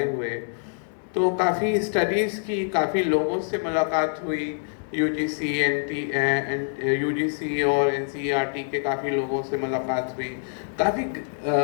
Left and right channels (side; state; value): right; silent; digital silence